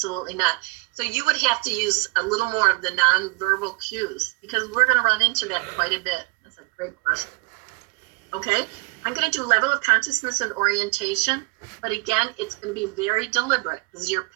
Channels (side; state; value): left; quieter; 23.6 dB